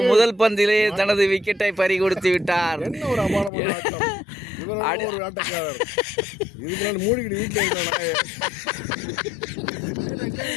முதல் பந்திலே தனது விக்கெட்டை பறி கொடுத்து விட்டார்.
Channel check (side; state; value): right; drops out; at 3.5 s